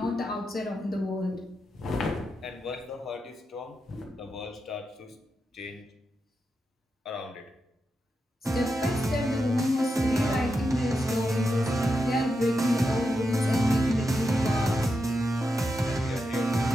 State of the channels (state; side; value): normal; both; correlation 0.87